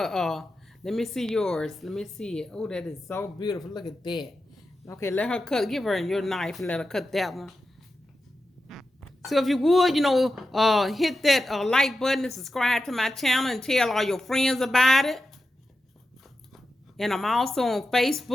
let me see yours. Let me see it. Oh, that is so beautiful. Look at that. Okay, let her cut. Give her your knife and let her cut that one. So if you would, hit that like button and subscribe to my channel and tell all your friends about it. And I'm also on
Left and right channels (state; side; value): normal; both; correlation 0.91